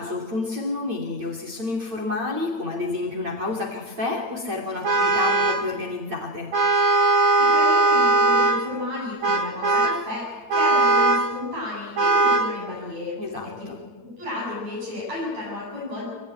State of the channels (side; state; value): left; late; 8.9 ms